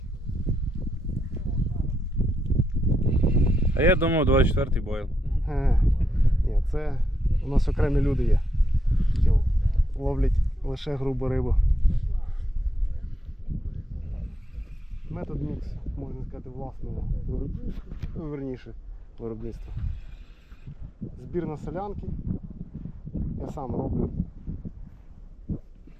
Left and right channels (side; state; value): both; normal; correlation 0.82